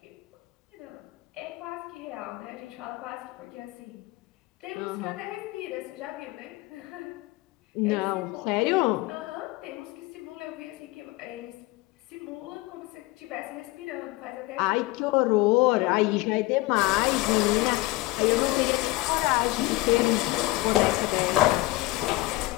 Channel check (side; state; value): right; quieter; 20.1 dB